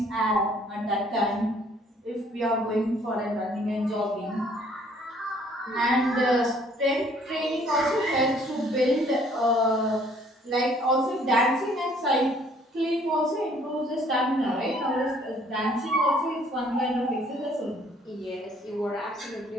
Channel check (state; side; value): normal; both; correlation 0.60